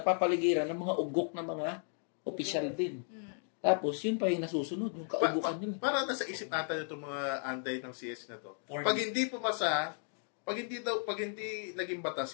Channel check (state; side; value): silent; right; 55 dB below the other